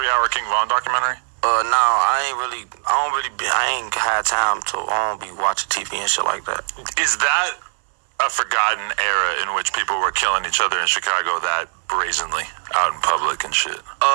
King Von documentary? No, I ain't had time to, I don't be watching TV and shit like that. Is that a forgotten era in which people were killing each other in Chicago that brazenly out in public and shit?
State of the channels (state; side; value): silent; left; 63 dB below the other